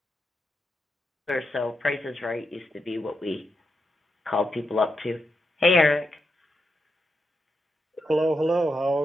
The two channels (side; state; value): both; normal; correlation 0.84